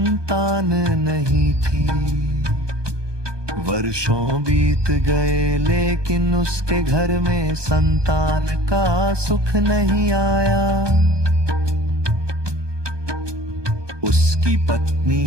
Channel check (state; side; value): late; left; 1.2 ms